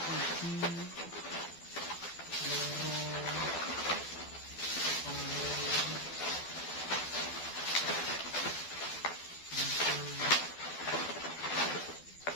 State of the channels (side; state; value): right; late; 12 ms